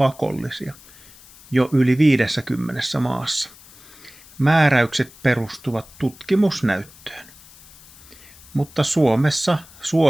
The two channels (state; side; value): noise; left; hiss, 23 dB below the sound